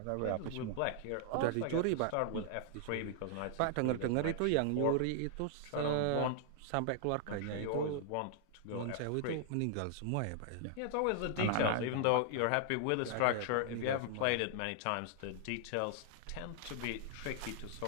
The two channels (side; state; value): both; different; correlation -0.01